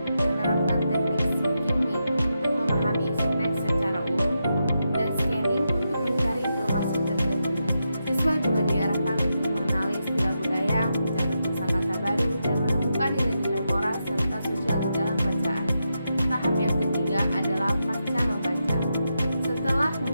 menerapkan teknik skimming untuk memahami isi teks secara umum dan scanning untuk mencari informasi tertentu. Siswa juga diarahkan untuk mengenali istilah budaya, mencatat kosakata baru, dan menemukan nilai-nilai moral serta sosial di dalam bacaan. Tahap yang ketiga adalah pasca membaca. Setelah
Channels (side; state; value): both; inverted; correlation -0.86